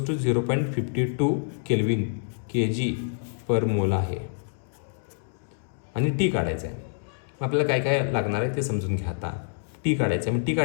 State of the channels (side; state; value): right; silent; digital silence